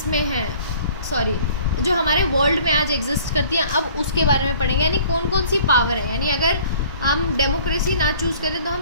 है, सॉरी, जो हमारे वर्ल्ड में आज एग्जिस्ट करती हैं, अब उसके बारे में पढ़ेंगे, यानी कौन कौन सी पावर है, यानी अगर हम डेमोक्रेसी ना चूज़ करें तो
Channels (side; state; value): both; inverted; correlation -0.52